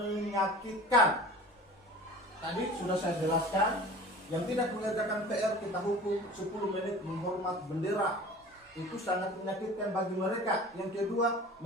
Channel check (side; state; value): both; normal; correlation 0.40